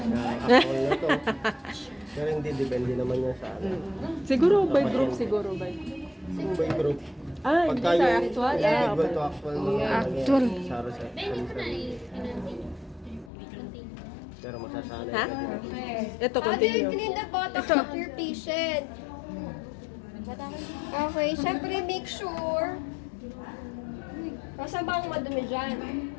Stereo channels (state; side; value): drops out; right; at 13.3 s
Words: na to. Pero hindi, depende naman yan sa ano. Siguro by group, siguro by. By group. Ah, hindi Pagka sa yung actual. equal to actual mga Actual. Saro sa Hindi ko na i-continue. Pero masasanay Ha? ka din. Okay. Ito, How do you continue. clean the botox of your patient? Okay, syempre make sure. Kasi bang madumi dyan?